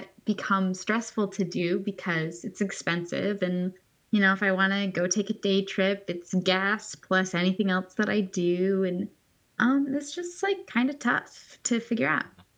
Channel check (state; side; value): identical; both; correlation 1.00